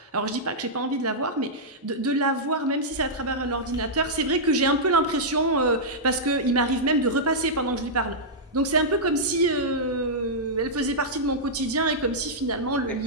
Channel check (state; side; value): normal; both; correlation -0.10